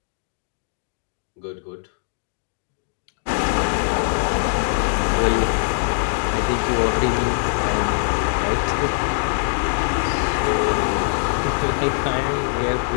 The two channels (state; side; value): silent; right; digital silence